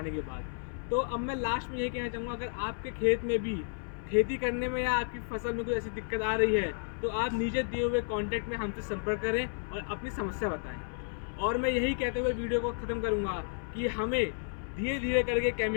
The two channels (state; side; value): silent; right; 56 dB below the other